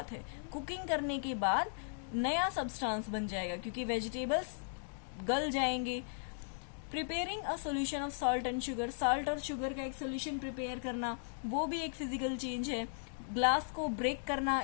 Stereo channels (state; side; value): silent; right; digital silence